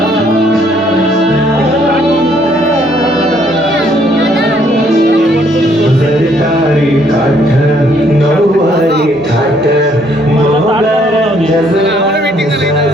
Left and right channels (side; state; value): both; normal; correlation 0.66